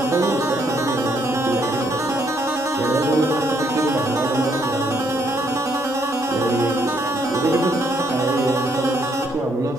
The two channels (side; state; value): both; normal; correlation 0.71